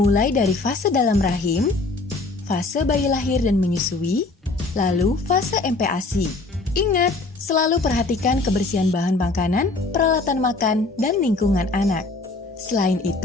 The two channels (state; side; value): quieter; right; 3.4 dB